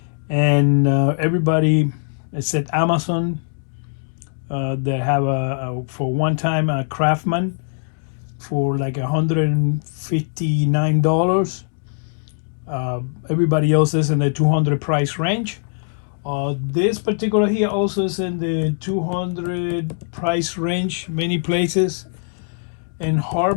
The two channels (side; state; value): right; silent; digital silence